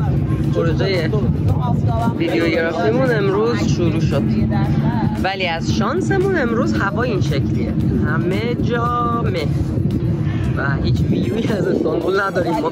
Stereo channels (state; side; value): identical; both; correlation 1.00